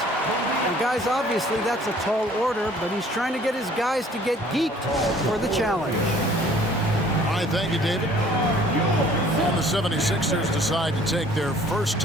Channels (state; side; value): normal; both; correlation 0.55